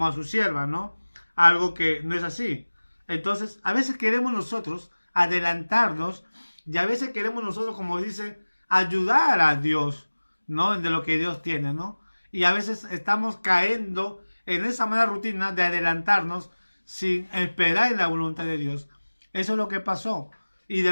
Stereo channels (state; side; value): inverted; both; correlation -1.00